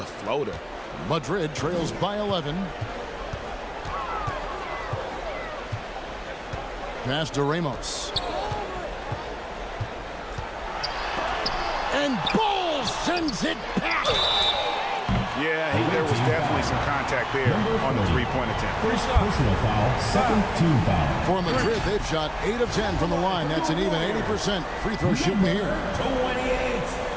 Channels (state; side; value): identical; both; correlation 1.00